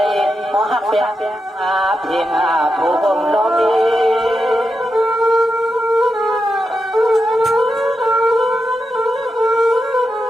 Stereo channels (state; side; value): normal; both; correlation 0.87